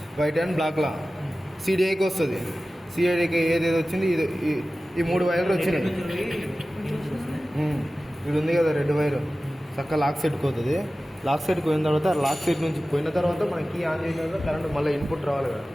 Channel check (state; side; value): normal; both; correlation 0.96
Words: white and black లా సిడిఐకి వస్తుంది. సిడిఐకి ఏదేది వచ్చింది, ఈ 3 వైర్లు వచ్చినాయి. ఇది ఉంది కదా రెడ్ వైర్, చక్క లాక్ సెట్కి పోతుంది. లాక్ సెట్కి పోయిన తర్వాత లాక్ సెట్ నుంచి పోయిన తర్వాత మన కీ ఆన్ చేసిన తర్వాత కరెంట్ మళ్ళీ ఇన్పుట్ రావాలి కదా,